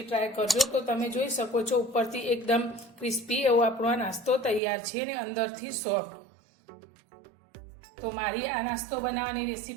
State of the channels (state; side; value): drops out; left; at 4.6 s